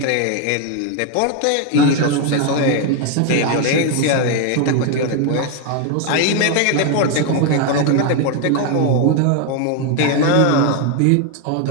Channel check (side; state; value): both; different; correlation 0.01